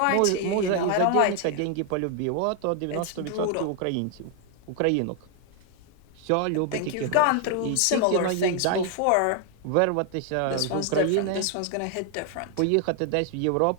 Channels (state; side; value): different; both; correlation 0.00